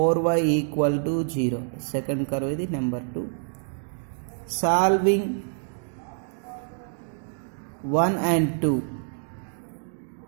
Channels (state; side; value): silent; left; 61 dB below the other